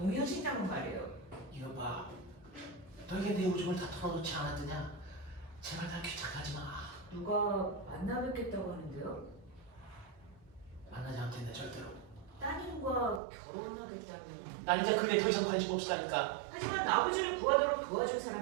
말이에요. 이거 봐. 너에게 내 오줌을 다 털어놓지 않았더냐? 제발 날 귀찮게 하지 마. 누가 만나 뵙겠다고 하는데요? 만나지 않겠네 절대로. 따님과 결혼하겠다면. 난 이제 그게 더 이상 관심 없으라니까. 하지만 아버지를 구하도록 도와준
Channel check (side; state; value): left; drops out; at 13.2 s